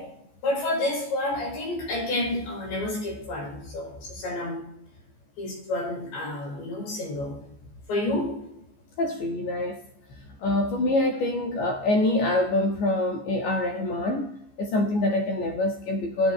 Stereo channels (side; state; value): right; late; 14 ms